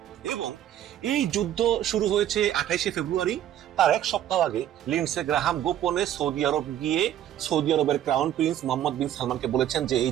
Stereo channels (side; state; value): left; quieter; 11.4 dB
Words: এবং এই যুদ্ধ শুরু হয়েছে 28শে ফেব্রুয়ারি। তার এক সপ্তাহ আগে লিন্ডসে গ্রাহাম গোপনে সৌদি আরব গিয়ে সৌদি আরবের ক্রাউন প্রিন্স মোহাম্মদ বিন সালমানকে বলেছেন যে এই